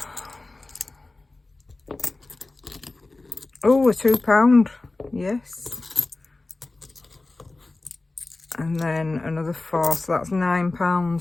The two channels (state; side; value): quieter; right; 3.2 dB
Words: Oh, a £2, yes. And then another 4, so that's